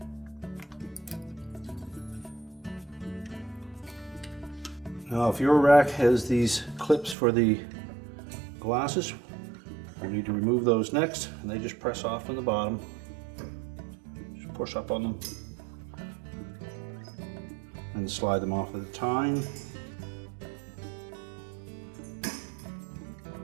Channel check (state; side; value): drops out; left; at 7.2 s